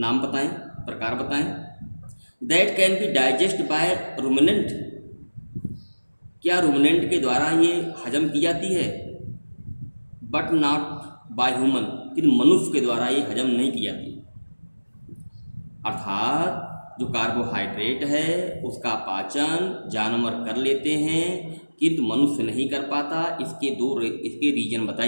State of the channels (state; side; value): inverted; both; correlation -1.00